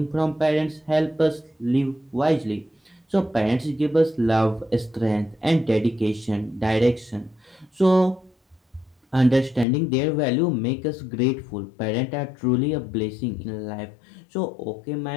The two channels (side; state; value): right; drops out; at 9.7 s